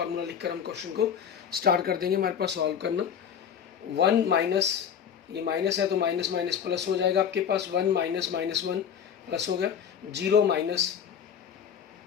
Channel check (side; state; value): right; quieter; 8.0 dB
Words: लिखकर हम क्वेश्चन को स्टार्ट कर देंगे हमारे पास सॉल्व करना। 1 माइनस, ये माइनस है तो माइनस माइनस प्लस हो जाएगा आपके पास। 1 - -1 प्लस हो गया। 0 माइनस